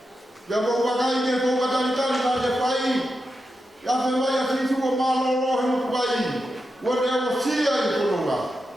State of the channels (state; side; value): normal; both; correlation 0.88